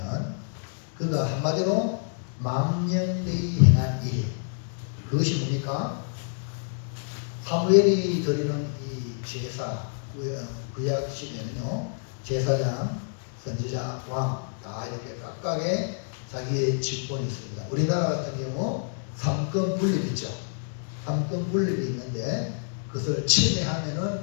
그가 한마디로 망령되이 행한 일, 그것이 뭡니까? 사무엘이 드리는 이 제사, 구약 시대는요 제사장, 선지자, 왕 다 이렇게 각각의 자기의 직분이 있습니다. 우리나라 같은 경우 삼권 분립 있죠. 삼권 분립이 있는데 그것을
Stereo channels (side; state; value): right; silent; digital silence